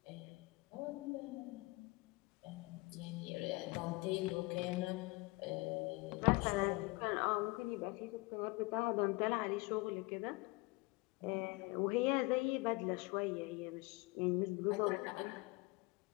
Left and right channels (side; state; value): right; quieter; 24.1 dB